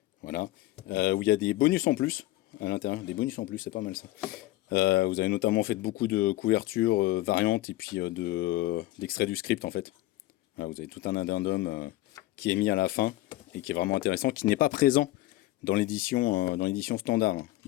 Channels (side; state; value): right; quieter; 17.1 dB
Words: voilà, où il y a des bonus en plus à l'intérieur, des bonus en plus, c'est pas mal ça. Vous avez notamment fait beaucoup de couvertures variantes et puis d'extraits du script en fait. Voilà, vous avez tout un addendum qui est mis à la fin et qui est vraiment intéressant, qui n'est pas présent dans l'édition standard.